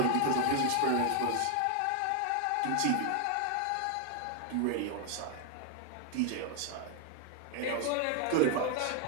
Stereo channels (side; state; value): both; different; correlation 0.00